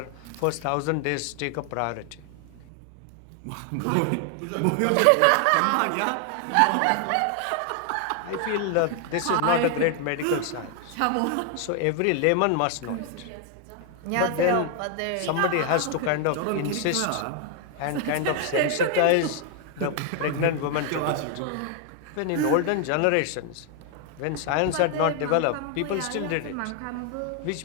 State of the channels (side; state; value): both; different; correlation 0.00